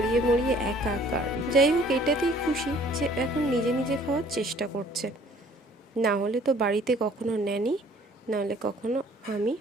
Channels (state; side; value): normal; both; correlation 0.56